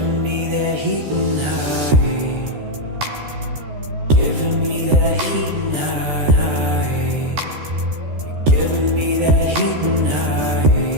me that heat and high, giving me that heat and high, giving me that heat and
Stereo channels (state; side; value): late; left; 13 ms